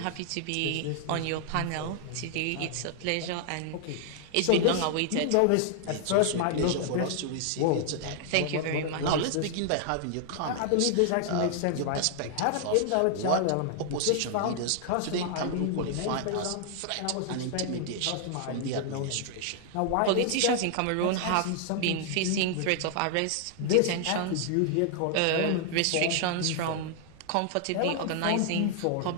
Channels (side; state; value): both; different; correlation 0.00